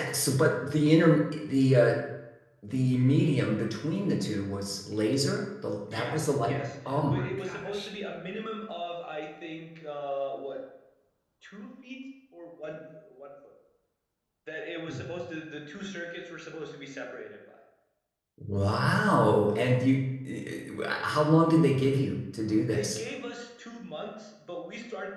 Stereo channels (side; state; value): both; identical; correlation 1.00